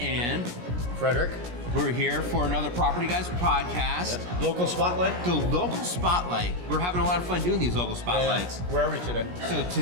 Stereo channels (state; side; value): late; left; 17 ms